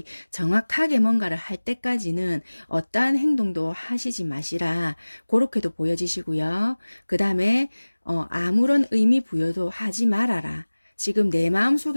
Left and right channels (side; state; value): both; inverted; correlation -1.00